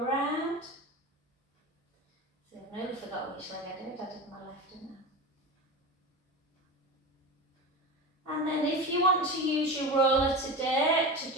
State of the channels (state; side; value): normal; both; correlation 0.27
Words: around. See, I nearly forgot which leg I did my left, didn't I? And then if you want to use your roller today to